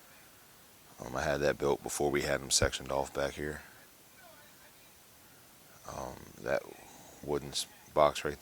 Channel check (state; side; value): identical; both; correlation 1.00